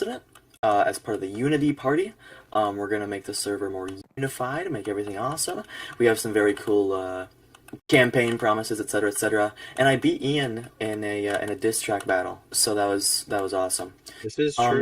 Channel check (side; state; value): both; identical; correlation 1.00